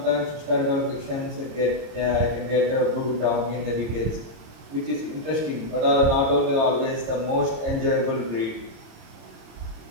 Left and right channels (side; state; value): left; late; 26 ms